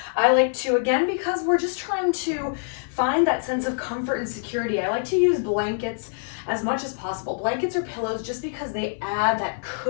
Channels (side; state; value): right; silent; 58 dB below the other